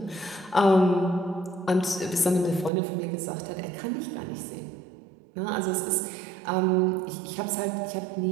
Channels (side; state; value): left; drops out; at 2.7 s